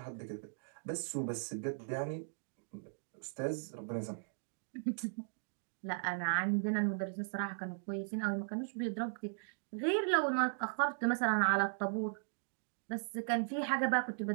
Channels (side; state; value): left; silent; digital silence